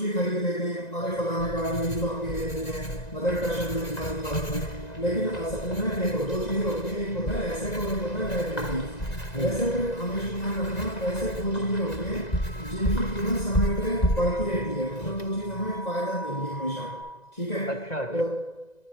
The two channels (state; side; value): late; right; 1.9 ms